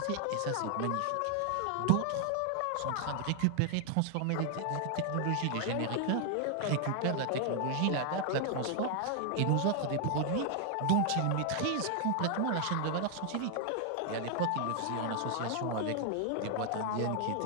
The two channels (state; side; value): different; both; correlation 0.00